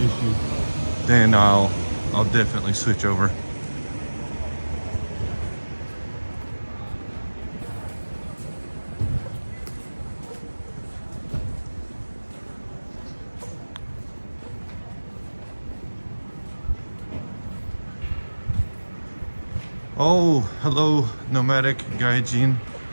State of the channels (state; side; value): inverted; both; correlation -1.00